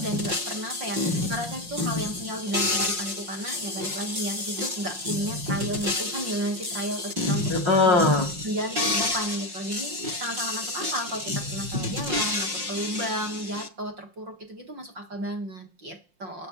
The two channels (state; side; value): late; left; 5.6 ms